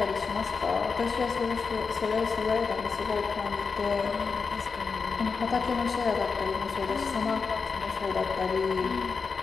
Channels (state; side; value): quieter; right; 5.1 dB